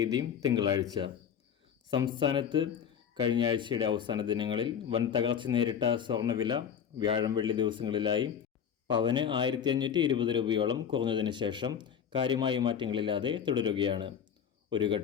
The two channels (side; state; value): right; quieter; 8.2 dB